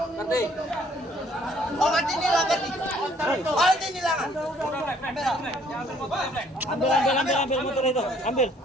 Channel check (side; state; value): both; normal; correlation 0.62